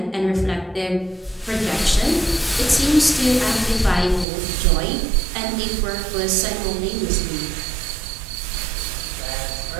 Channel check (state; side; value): drops out; left; at 4.2 s